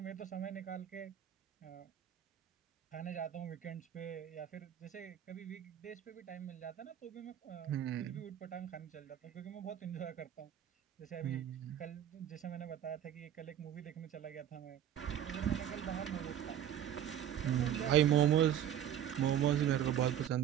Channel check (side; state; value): left; quieter; 10.4 dB